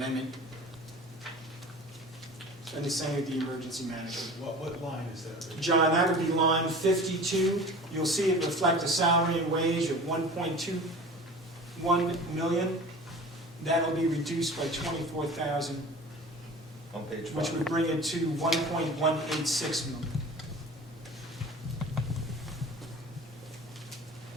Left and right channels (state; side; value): normal; both; correlation 0.39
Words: And the same with the emergency management. What line is that? John, that would be line 52. You'll see it reflect a salary and wage of 1.21 million. That'll be reduced by 24,000, On page 5. which would bring it to 1.186 million.